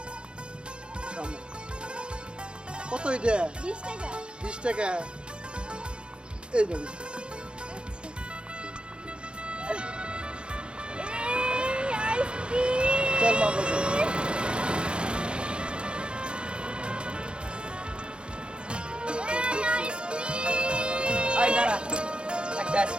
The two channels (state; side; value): late; left; 0.054 ms